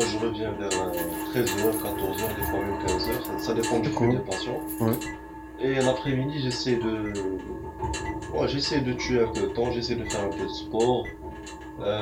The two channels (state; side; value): identical; both; correlation 1.00